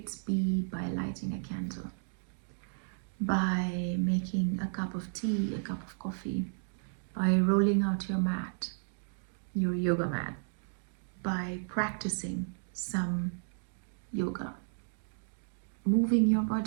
be by lighting a candle, by making a cup of tea, a cup of coffee, by rolling out your mat, your yoga mat, by practicing some yoga, moving your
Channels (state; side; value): silent; left; digital silence